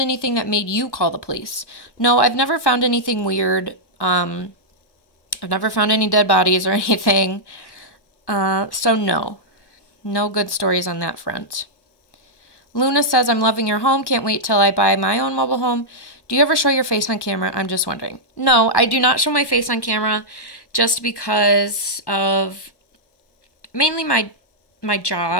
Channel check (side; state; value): right; late; 1.1 ms